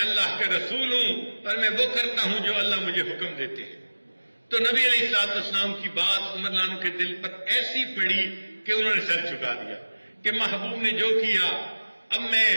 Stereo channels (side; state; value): both; inverted; correlation -1.00